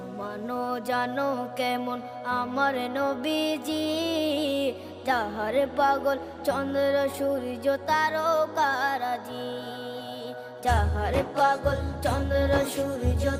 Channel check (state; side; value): identical; both; correlation 1.00